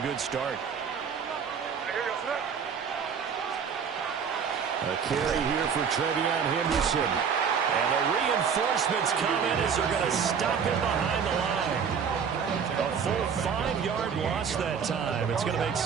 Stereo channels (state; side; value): quieter; left; 6.8 dB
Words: good start. A carry here for Trevion Henderson. And the reinforcements come in as they're going to stop him behind the line. A full 5-yard loss that time. It's going to make